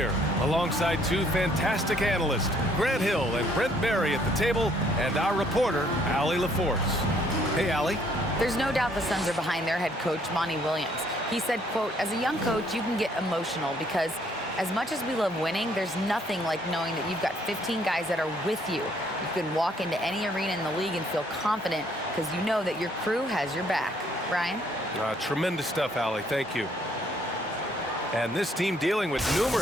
alongside two fantastic analysts, Grant Hill and Brent Berry at the table, and our reporter, Allie LaForce. Hey, Allie. There's no doubt the Suns are behind their head coach, Monty Williams. He said, quote, as a young coach, you can get emotional because as much as we love winning, there's nothing like knowing that you've got 15 guys that are with you. You can walk into any arena in the league and feel confident because you know that your crew has your back. Brian? Tremendous stuff, Allie. Thank you. And this team dealing with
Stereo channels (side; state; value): both; normal; correlation 0.65